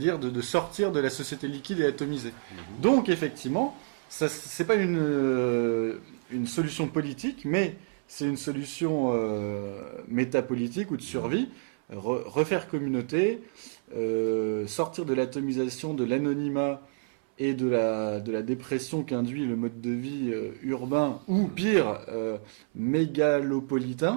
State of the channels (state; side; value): silent; left; 59 dB below the other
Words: de sortir de la société liquide et atomisée. Donc, effectivement, ça, c'est pas une solution politique, mais c'est une solution métapolitique ou de survie. Refaire communauté, sortir de l'atomisation, de l'anonymat et de la dépression qu'induit le mode de vie urbain, ou pire,